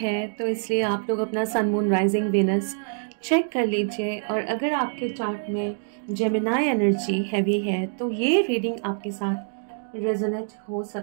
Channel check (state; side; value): silent; left; digital silence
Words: तो इसलिए आप लोग अपना सन, मून, राइजिंग, वेनस चेक कर लीजिए। और अगर आपके चार्ट में जेमिनाई एनर्जी हैवी है तो ये रीडिंग आपके साथ रेजोनेट हो